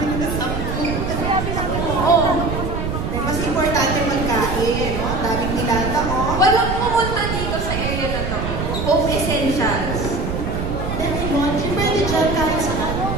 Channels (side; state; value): right; noise; rumble, 3 dB below the sound